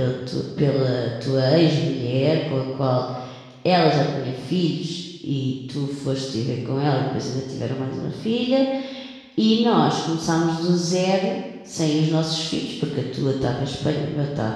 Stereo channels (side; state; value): both; identical; correlation 1.00